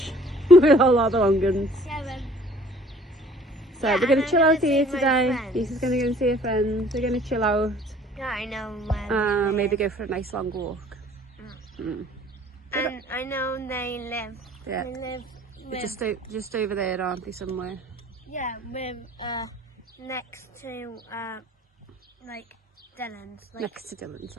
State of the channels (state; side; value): normal; both; correlation 0.54